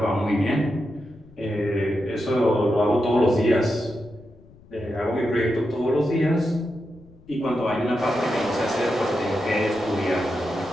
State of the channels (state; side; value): noise; left; rumble, 24 dB below the sound